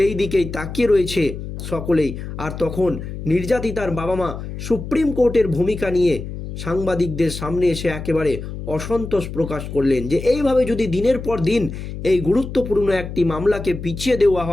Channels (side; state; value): left; noise; hum, 8 dB below the sound